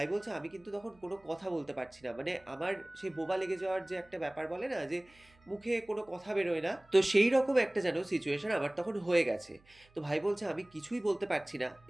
বলছে, "আমি কিন্তু তখন কোনো কথা বলতে পারছি না। মানে আমার সেই বোবা লেগে যাওয়ার যে একটা ব্যাপার বলে না যে মুখে কোনো কথা বেরোয় না, তো সেই রকম একটা যেন সিচুয়েশন আমার তখন হয়ে গেছে।" তো ভাই বলছে, "আমি কিছুই বলতে পারছি না।"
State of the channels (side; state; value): right; noise; hum, 30 dB below the sound